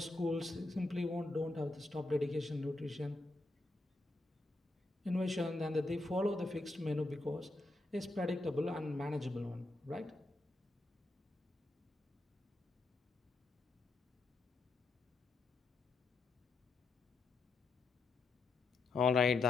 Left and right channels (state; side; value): quieter; right; 3.1 dB